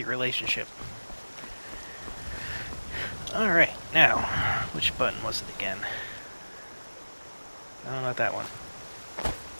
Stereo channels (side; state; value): both; inverted; correlation -1.00